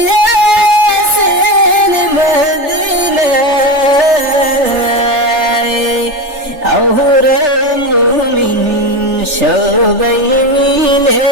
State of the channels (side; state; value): left; late; 3.4 ms